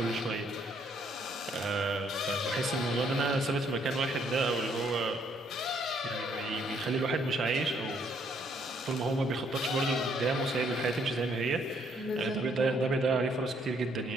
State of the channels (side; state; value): both; normal; correlation 0.68